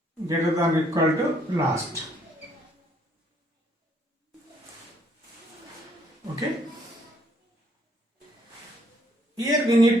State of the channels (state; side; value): normal; both; correlation 0.67